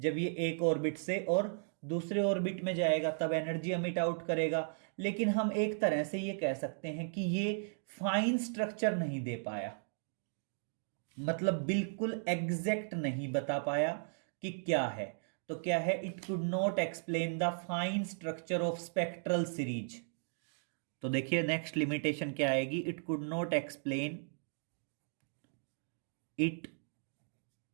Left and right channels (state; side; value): silent; left; digital silence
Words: ये एक ऑर्बिट से और दूसरे ऑर्बिट में जाएगा तब एनर्जी एमिट आउट करेगा। लेकिन हम एक तरह से ये कह सकते हैं कि ये फाइन स्ट्रक्चर नहीं दे पाया, मतलब बिल्कुल एग्जैक्ट नहीं बता पाया कि क्या है। तो क्या है, it could not explain the fine structure of spectral series. तो देखिए नेक्स्ट लिमिटेशन क्या आएगी, it could not explain, it